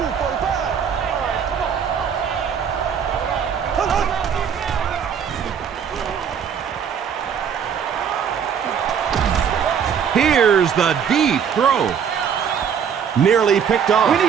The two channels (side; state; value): left; quieter; 7.5 dB